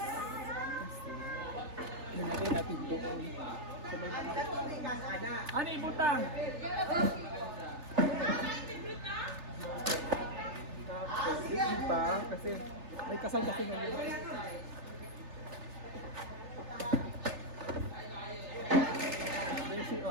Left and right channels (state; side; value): late; left; 3.3 ms